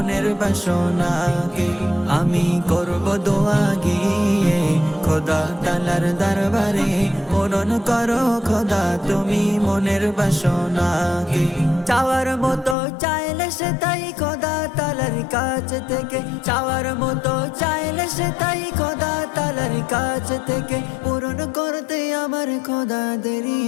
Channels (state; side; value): drops out; right; at 12.8 s